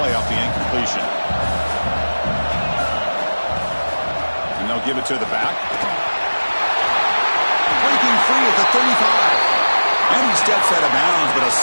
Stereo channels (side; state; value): both; inverted; correlation -1.00